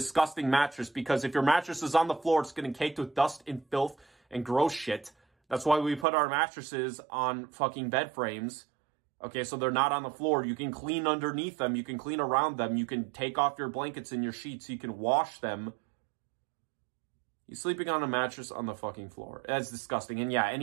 mattress, because if your mattress is on the floor, it's getting caked with dust and filth and gross shit. That's why we put our mattresses on fucking bed frames. Okay, so they're not on the floor. You can clean underneath them. You can clean around them. You can take off your blankets and your sheets. You can wash them. You're sleeping on a mattress on the fucking floor. That's disgusting. And yeah,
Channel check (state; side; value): drops out; left; at 6.1 s